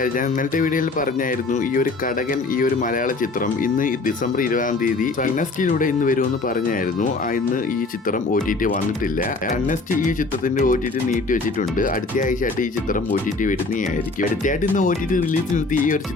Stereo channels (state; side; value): quieter; right; 3.5 dB